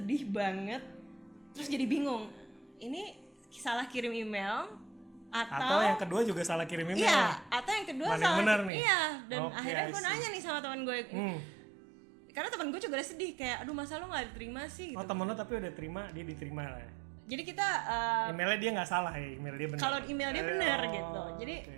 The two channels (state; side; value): drops out; left; at 8.7 s